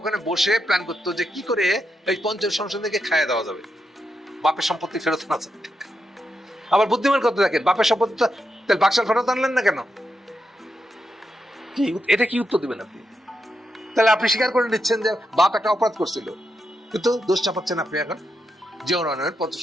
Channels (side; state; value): both; normal; correlation 0.84